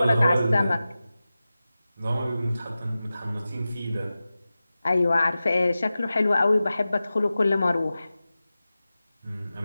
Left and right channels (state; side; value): inverted; both; correlation -0.95